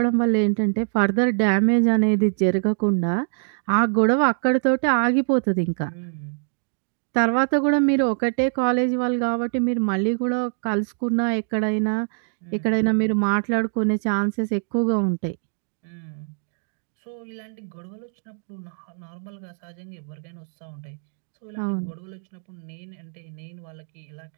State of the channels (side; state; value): left; silent; digital silence